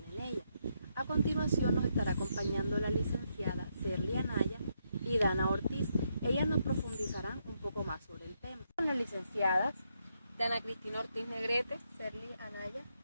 en ella. A continuación nos estará acompañando la licenciada Serly Anaya y Dana Ortiz. Ellas nos profundizarán un poco más sobre el tema. Las licenciadas Dana Cristina Ortiz Negrete, Serly Anaya.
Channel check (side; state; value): both; inverted; correlation -0.79